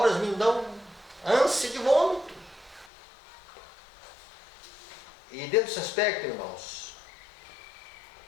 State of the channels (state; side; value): drops out; right; at 2.9 s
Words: me dão ânsia de vômito. E dentro desse aspecto, irmãos,